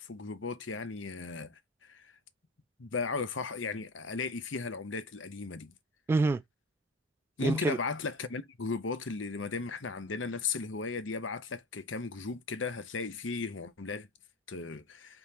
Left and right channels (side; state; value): both; normal; correlation 0.35